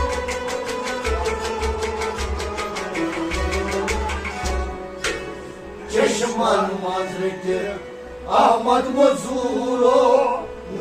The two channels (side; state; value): both; identical; correlation 1.00